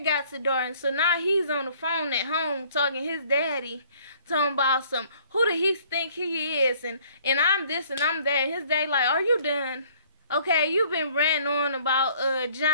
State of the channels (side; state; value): both; inverted; correlation -0.57